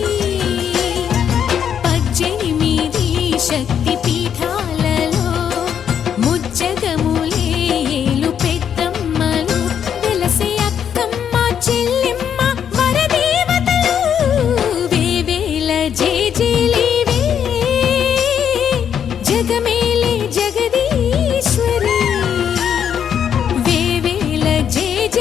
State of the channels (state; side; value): quieter; right; 8.5 dB